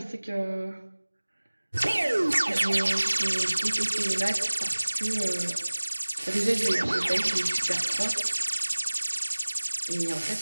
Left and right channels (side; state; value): both; inverted; correlation -1.00